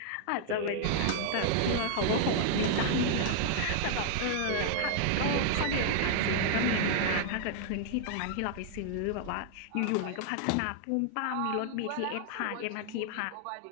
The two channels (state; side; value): different; both; correlation 0.00